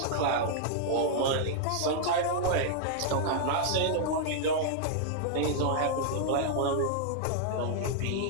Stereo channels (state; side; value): different; both; correlation -0.01